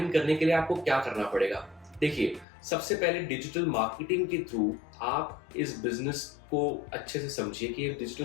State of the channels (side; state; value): right; drops out; at 2.5 s